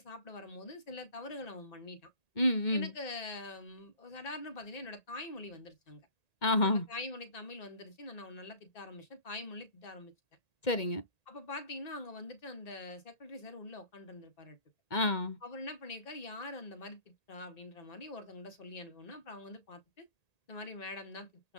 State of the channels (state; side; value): late; right; 1.8 ms